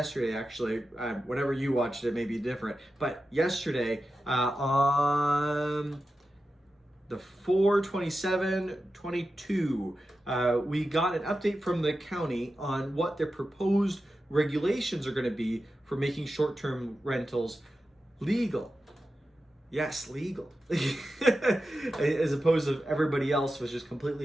actually, whenever you watched it may be different, but yesterday on the 4/27/22, we got an update from the county on what their proposed regulations are going to be for making short-term rentals legal. Yes, legal. As opposed to everybody else was just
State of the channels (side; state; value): both; normal; correlation 0.92